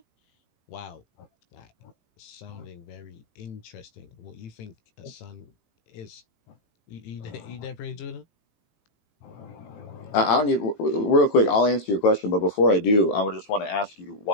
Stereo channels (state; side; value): late; right; 18 ms